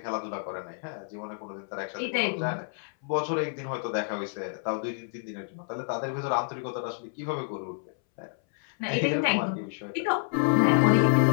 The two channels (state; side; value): silent; right; 59 dB below the other